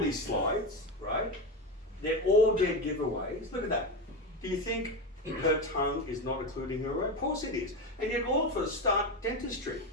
slides, right? They're all dead giveaways. Look at that. Do you think her tongue is not including her own? Of course it is. And yet all of us start dentistry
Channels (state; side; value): normal; both; correlation 0.17